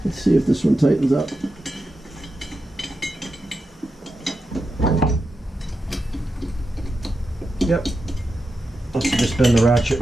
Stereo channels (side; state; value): both; normal; correlation 0.89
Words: Let's see if this one tightens up. Yep. Must have just been the ratchet